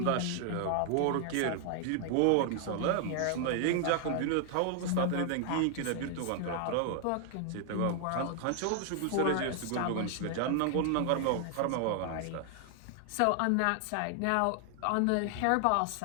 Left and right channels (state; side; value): different; both; correlation 0.00